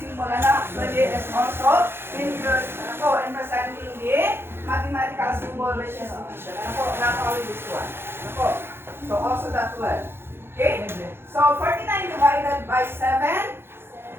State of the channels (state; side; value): late; left; 0.11 ms